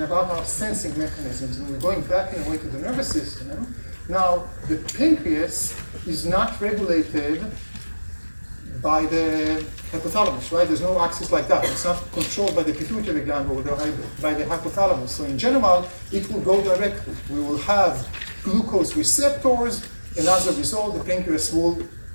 about our sensing mechanisms. And we're going back in a way to the nervous system. Now, the pancreas is not regulated by the hypothalamus, right? There's no axis like that. It's not controlled by the pituitary gland or by the hypothalamus. So in general, it will go directly. We will have glucose receptors, and as a result, the pancreas will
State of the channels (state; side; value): inverted; both; correlation -1.00